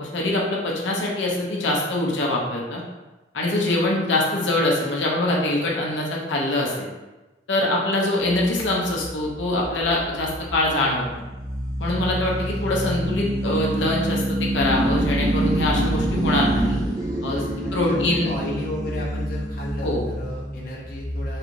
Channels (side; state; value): both; normal; correlation 0.47